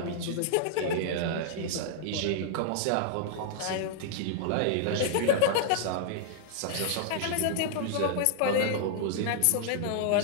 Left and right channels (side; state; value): both; different; correlation -0.01